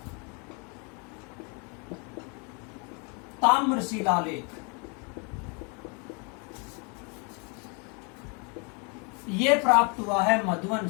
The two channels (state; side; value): quieter; right; 34.1 dB